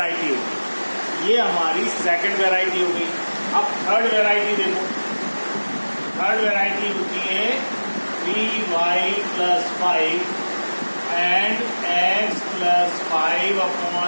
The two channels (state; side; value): inverted; both; correlation -1.00